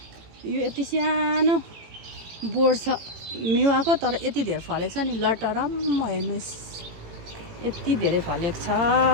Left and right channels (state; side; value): late; left; 18 ms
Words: यो यति सानो बोट छ मेवाको, तर यति धेरै फलेको छ नि लटरम्म हेर्नुहोस्। यति धेरै फलेको छ